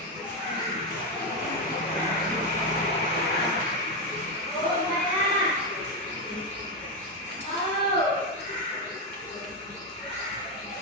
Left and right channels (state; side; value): normal; both; correlation 0.08